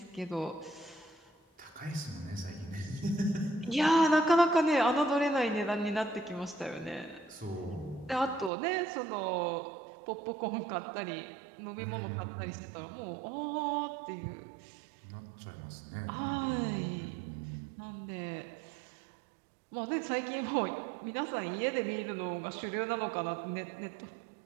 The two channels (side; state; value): left; drops out; at 8.5 s